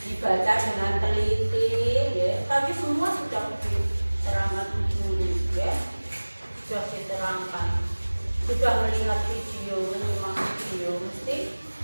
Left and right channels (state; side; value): inverted; both; correlation -1.00